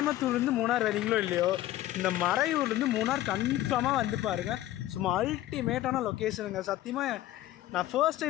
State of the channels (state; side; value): quieter; right; 14.6 dB